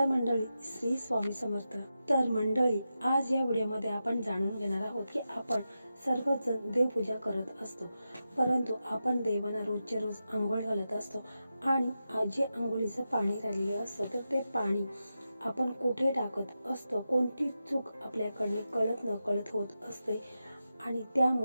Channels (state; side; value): inverted; both; correlation -0.90